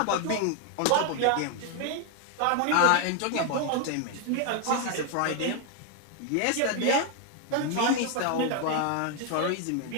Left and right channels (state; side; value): different; both; correlation 0.00